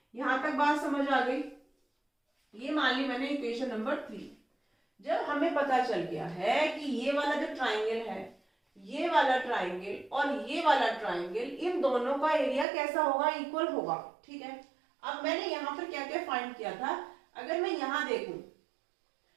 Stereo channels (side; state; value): left; drops out; at 12.7 s